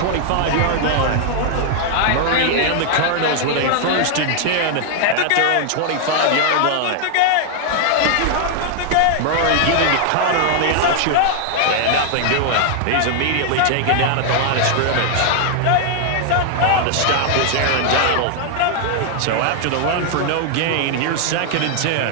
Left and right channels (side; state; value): both; different; correlation 0.00